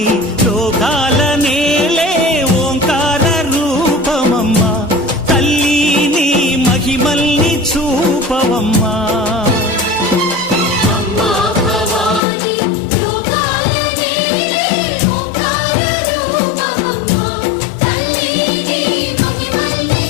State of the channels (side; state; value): right; drops out; at 12.2 s